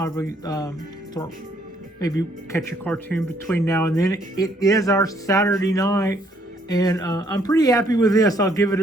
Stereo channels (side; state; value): both; normal; correlation 0.67